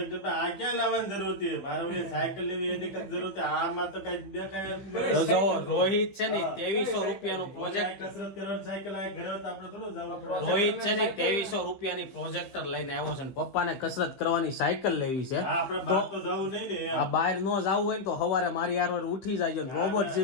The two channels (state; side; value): late; right; 15 ms